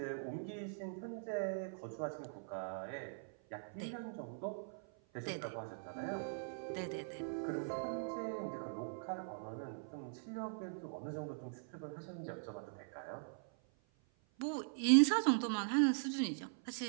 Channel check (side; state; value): left; silent; 50 dB below the other